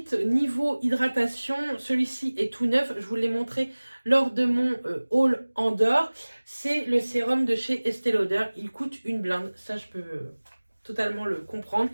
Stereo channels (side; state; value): both; inverted; correlation -1.00